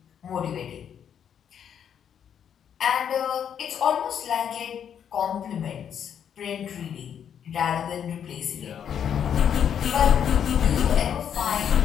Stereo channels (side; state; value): right; quieter; 8.6 dB